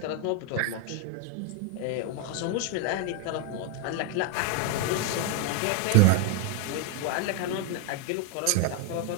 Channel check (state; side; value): different; both; correlation 0.01